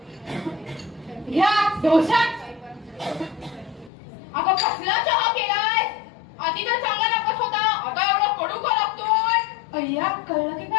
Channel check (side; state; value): right; drops out; at 3.9 s